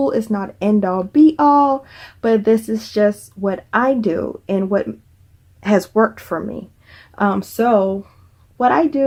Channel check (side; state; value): both; identical; correlation 1.00